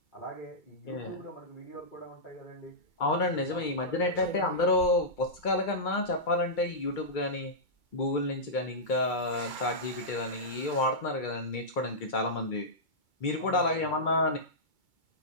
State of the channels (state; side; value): late; right; 2.3 ms